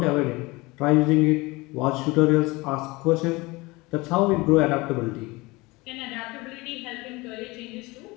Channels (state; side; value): quieter; right; 23.1 dB